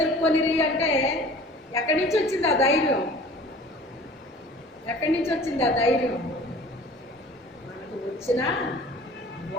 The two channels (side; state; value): both; normal; correlation 0.46